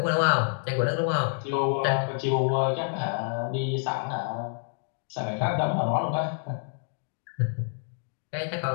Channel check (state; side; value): silent; right; digital silence